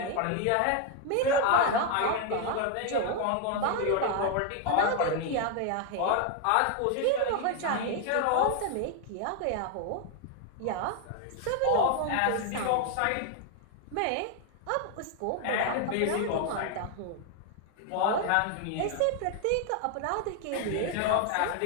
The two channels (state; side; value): different; both; correlation 0.01